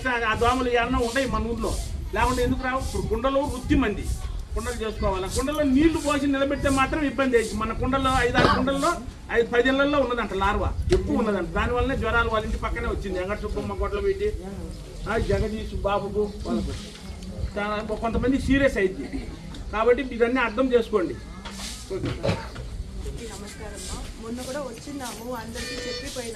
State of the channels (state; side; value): identical; both; correlation 1.00